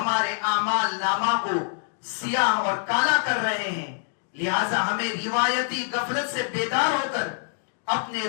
اعمال نامہ کو سیاہ اور کالا کر رہے ہیں، لہٰذا ہمیں روایتی غفلت سے بیدار ہو کر اپنے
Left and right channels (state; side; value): silent; right; digital silence